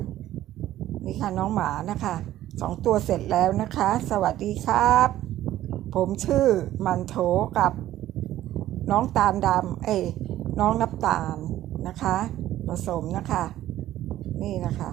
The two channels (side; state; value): left; quieter; 13.6 dB